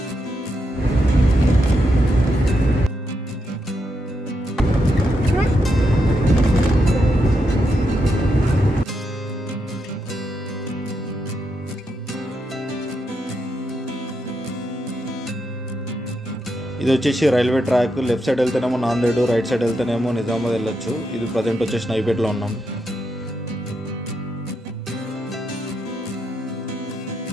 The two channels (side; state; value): both; normal; correlation 0.83